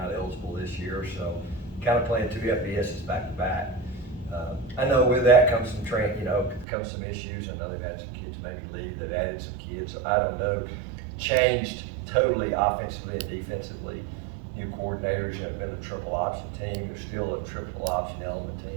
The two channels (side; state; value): left; drops out; at 6.7 s